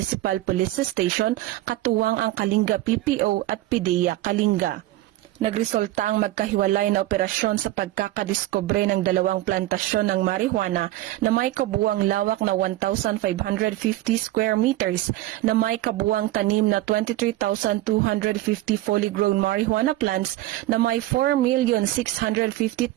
Police Station, katuwang ang Kalinga PPO at PIDEA Kalinga. Nagresulta ang magkahiwalay na operasyon sa pagkakadiskubre ng 2 plantasyon ng marijuana na may kabuuang lawak na 1,550 square meters na may kabuuang tanim na 23,250 fully grown marijuana plants na may 4,650,000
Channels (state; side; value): quieter; left; 16.0 dB